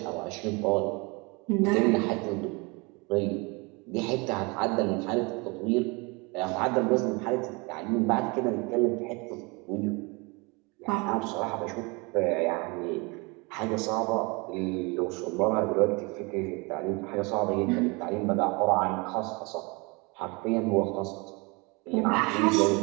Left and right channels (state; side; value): quieter; left; 28.1 dB